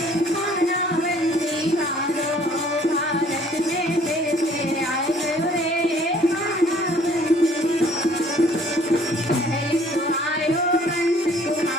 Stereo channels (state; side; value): normal; both; correlation 0.57